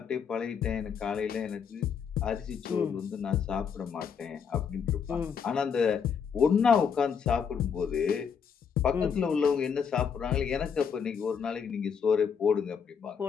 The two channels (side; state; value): right; quieter; 6.8 dB